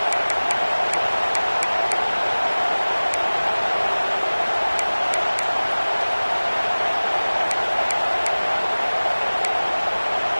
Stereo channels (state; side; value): inverted; both; correlation -1.00